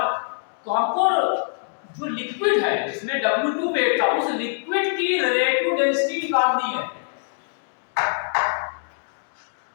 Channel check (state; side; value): silent; right; digital silence